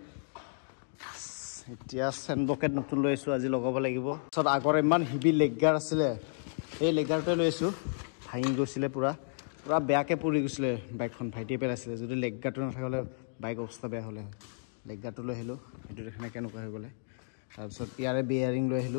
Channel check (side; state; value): right; silent; digital silence